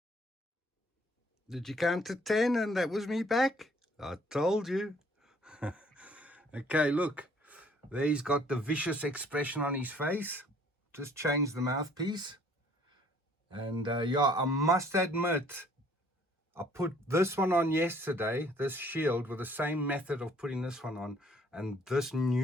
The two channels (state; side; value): normal; both; correlation 0.59